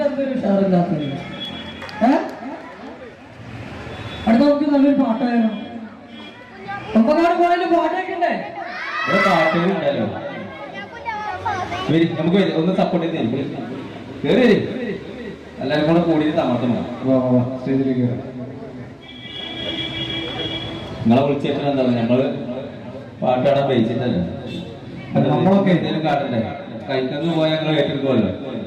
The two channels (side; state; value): both; identical; correlation 1.00